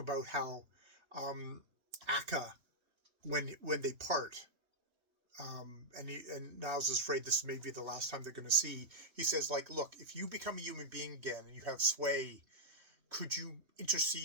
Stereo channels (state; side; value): late; left; 3.2 ms